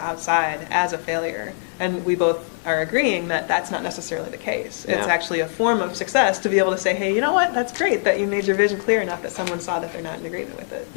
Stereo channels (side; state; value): right; silent; digital silence